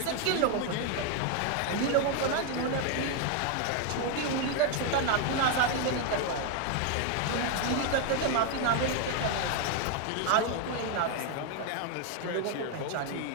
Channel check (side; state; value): both; different; correlation 0.01